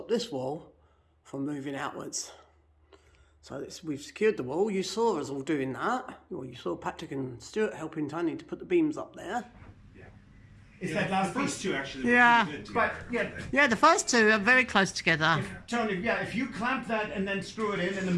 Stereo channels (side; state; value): both; identical; correlation 1.00